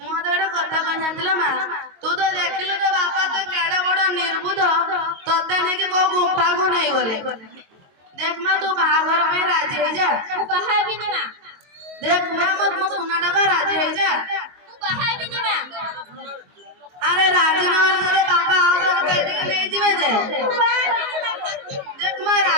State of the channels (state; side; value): late; left; 22 ms